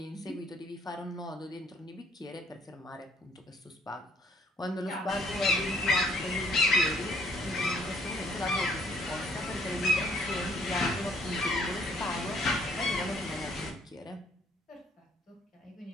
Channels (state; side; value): normal; both; correlation 0.64